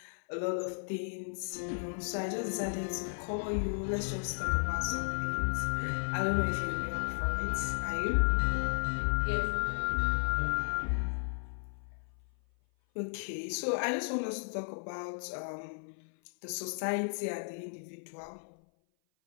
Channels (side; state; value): right; silent; 55 dB below the other